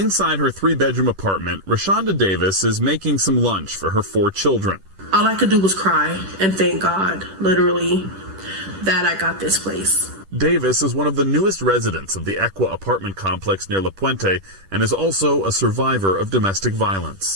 her 3-bedroom apartment, Rashonda Davis is making some lunch for her 4 children. All I could do was cry and thank God, literally, that I got this place. Davis is one of the newest residents of the Equa apartment complex near La Puente and is also a survivor of domestic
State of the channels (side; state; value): left; late; 10 ms